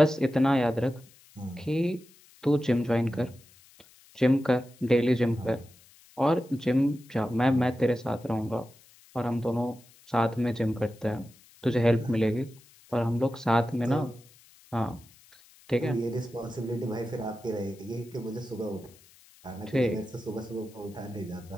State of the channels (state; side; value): noise; left; hiss, 26 dB below the sound